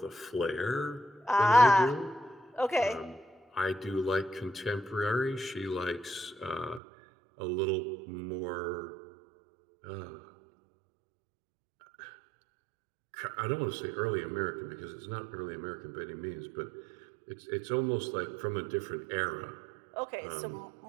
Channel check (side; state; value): left; drops out; at 6.8 s